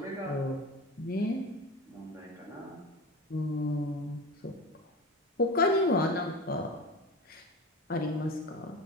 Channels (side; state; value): both; normal; correlation 0.30